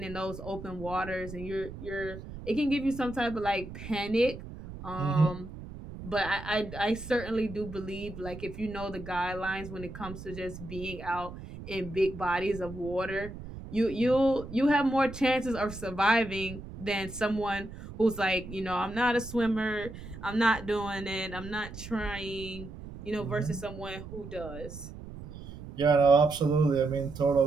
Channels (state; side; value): noise; right; rumble, 12 dB below the sound